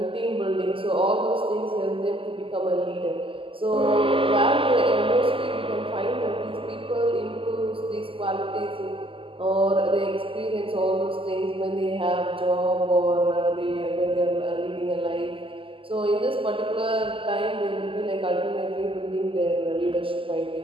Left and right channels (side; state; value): left; late; 0.25 ms